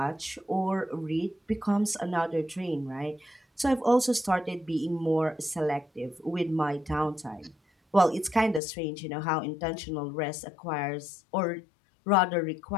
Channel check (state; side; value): drops out; right; at 8.6 s